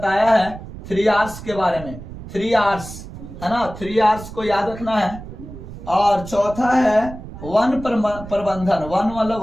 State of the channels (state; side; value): noise; right; rumble, 13 dB below the sound